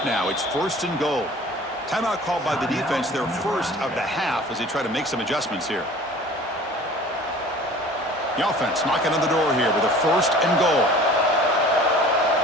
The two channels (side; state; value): both; normal; correlation 0.46